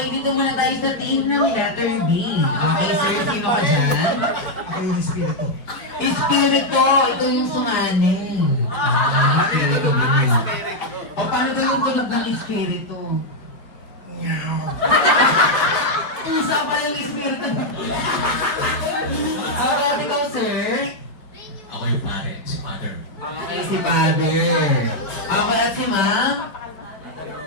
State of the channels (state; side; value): late; right; 4.8 ms